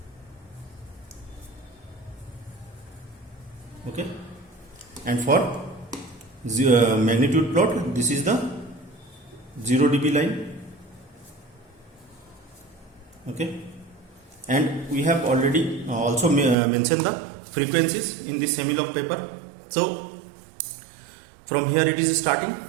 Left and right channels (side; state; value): left; drops out; at 16.6 s